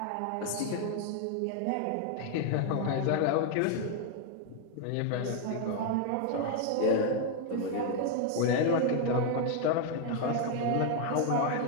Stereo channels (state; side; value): different; both; correlation 0.00